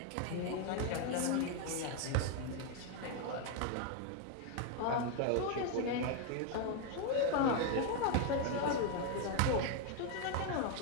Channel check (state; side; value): different; both; correlation 0.01